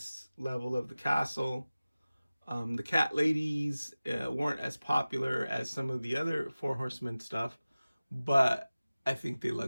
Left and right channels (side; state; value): both; inverted; correlation -0.97